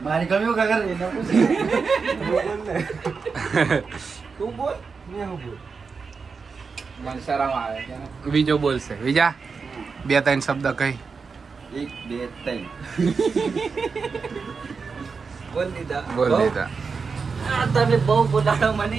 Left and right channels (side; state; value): left; quieter; 5.1 dB